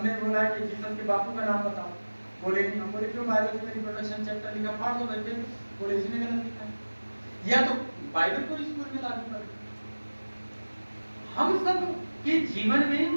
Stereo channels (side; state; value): both; inverted; correlation -1.00